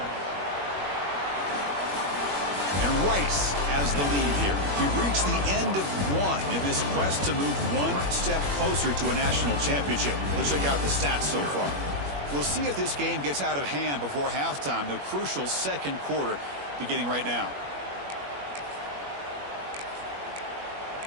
And Rice has the lead here. We've reached the end of one in this quest to move one step closer to a national championship. Let's check out the stats so far. We'll see if this game gets out of hand before halftime, the crucial second quarter beginning right now.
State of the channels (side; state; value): left; late; 21 ms